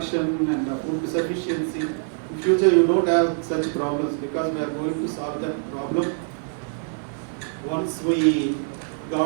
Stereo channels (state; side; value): silent; left; digital silence